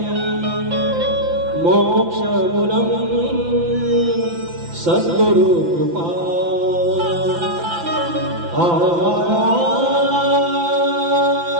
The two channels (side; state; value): left; late; 5.9 ms